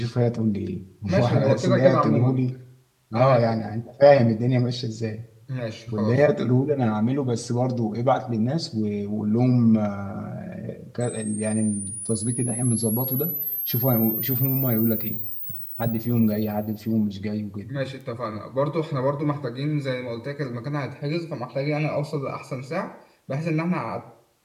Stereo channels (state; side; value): identical; both; correlation 1.00